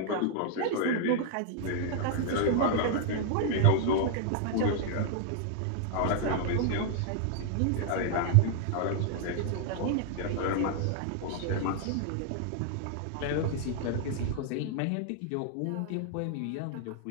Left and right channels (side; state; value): both; different; correlation 0.00